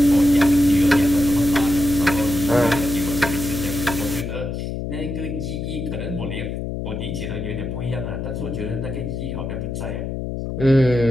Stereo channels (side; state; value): left; noise; hum, 5 dB below the sound